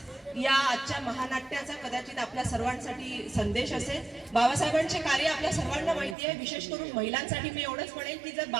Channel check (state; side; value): drops out; left; at 6.2 s